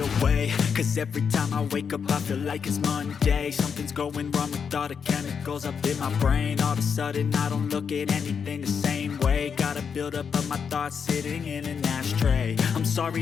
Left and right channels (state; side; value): quieter; right; 6.6 dB